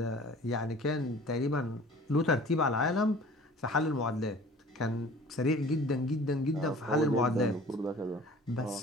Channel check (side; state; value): both; normal; correlation 0.46